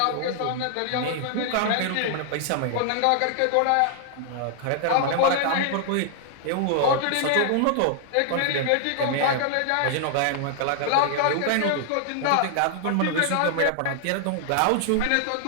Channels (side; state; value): both; different; correlation -0.01